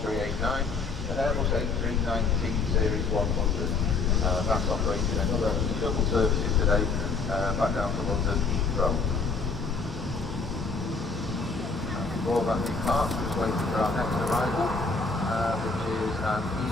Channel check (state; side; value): quieter; right; 4.2 dB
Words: and Airbus A319 Series 100. That's operating another shuttle services today back down to London Heathrow. All that departs, just waiting for our next arrival, which is